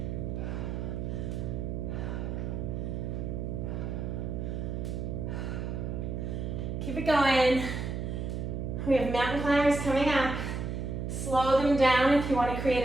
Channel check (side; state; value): right; noise; hum, 3 dB below the sound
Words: Keep it going. We have mountain climbers coming up. Slow them down if you want to